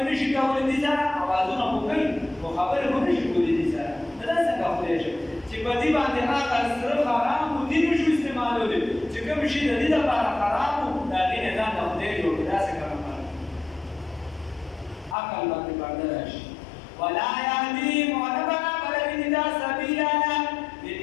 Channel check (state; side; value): drops out; right; at 15.2 s